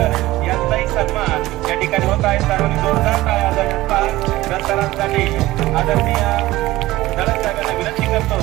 यांचाही सन्मान या ठिकाणी होत आहे. सर्वांनी जोरदार टाळ्या वाजवून सरांसाठी आदरणीय धडक साहेबांना विनंती करतो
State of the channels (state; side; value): quieter; left; 17.5 dB